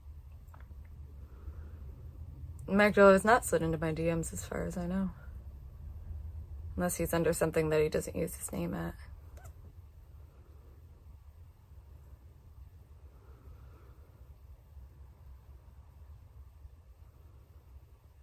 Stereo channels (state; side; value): identical; both; correlation 1.00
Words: Magdalene has not slid into my DMs as far as I know. Unless he's under something that he doesn't use his name at.